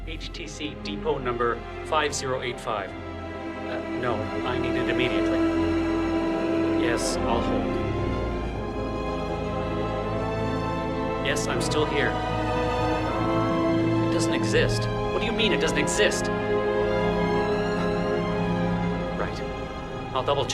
HTC depot number 5085. No, I need it immediately. Yes, I'll hold. Yes, I'm still here. It doesn't exist. What do you mean it doesn't exist? Right. I'll double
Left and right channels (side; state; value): both; identical; correlation 1.00